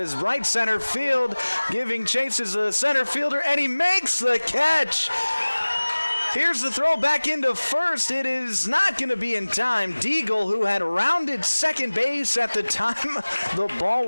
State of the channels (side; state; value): both; inverted; correlation -1.00